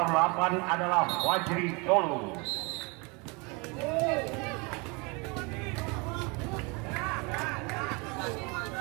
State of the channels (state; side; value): quieter; left; 29.4 dB